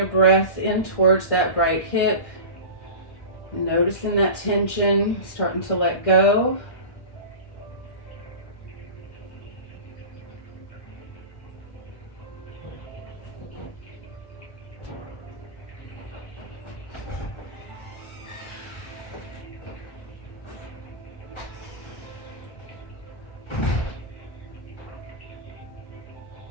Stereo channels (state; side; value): late; right; 1.6 ms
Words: breath in towards that right hip. Noticing that tension, starting to let go.